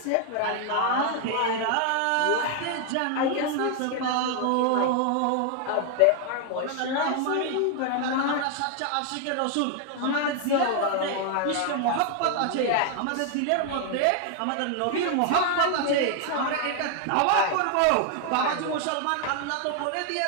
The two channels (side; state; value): both; different; correlation 0.00